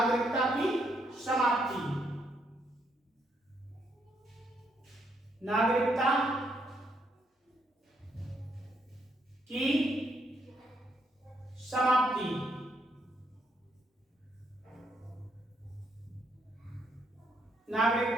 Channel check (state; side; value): normal; both; correlation 0.75